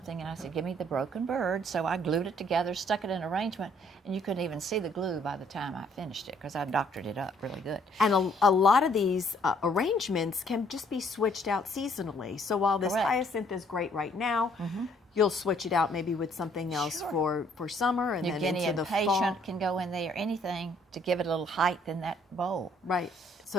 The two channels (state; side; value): normal; both; correlation 0.64